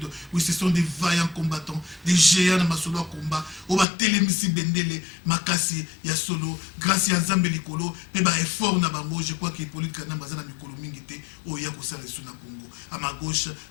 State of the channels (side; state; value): right; drops out; at 3.9 s